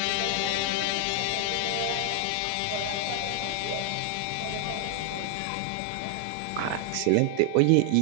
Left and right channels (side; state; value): both; different; correlation 0.00